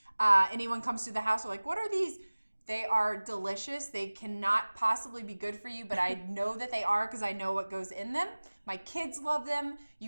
anyone comes to the house, they're like, "What are these?" They are delicious. They cannot possibly be good for you, but I know that they are because I know what goes in them. My kids love them.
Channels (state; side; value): inverted; both; correlation -1.00